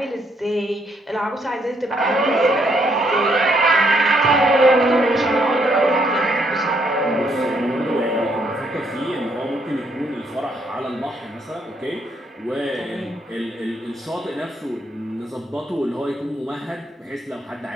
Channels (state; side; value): normal; both; correlation 0.72